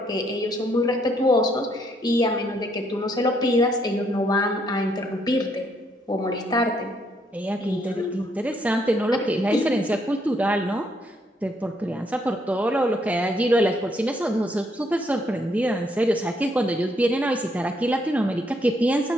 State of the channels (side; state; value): both; normal; correlation 0.72